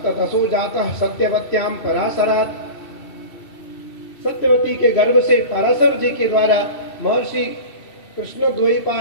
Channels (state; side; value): late; right; 2.7 ms